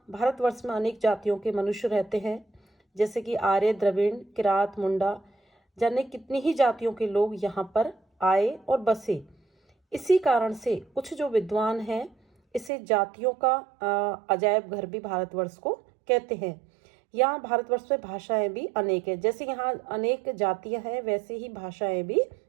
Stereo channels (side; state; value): left; drops out; at 12.7 s